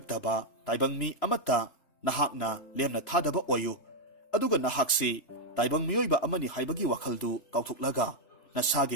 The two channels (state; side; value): late; right; 3.3 ms